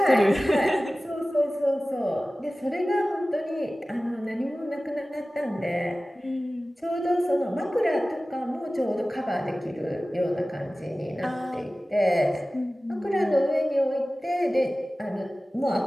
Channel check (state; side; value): normal; both; correlation 0.97